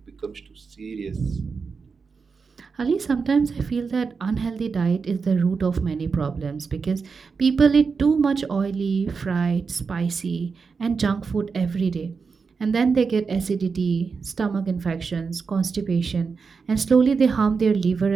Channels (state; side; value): quieter; left; 5.1 dB